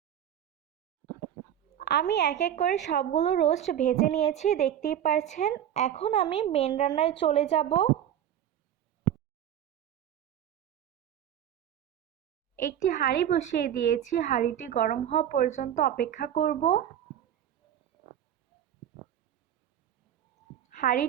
আমি এক এক করে সবগুলো রোস্ট ভেজে নিয়েছি, দেখতেই পাচ্ছেন। এখন আমি মেন রান্নায় চলে যাব। একটি হাঁড়ি বসিয়ে দিয়েছি, হাঁড়িটি গরম হওয়া পর্যন্ত অপেক্ষা করব।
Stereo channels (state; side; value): quieter; left; 10.4 dB